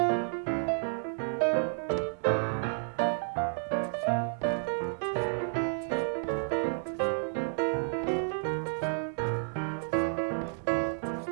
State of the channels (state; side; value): silent; left; 57 dB below the other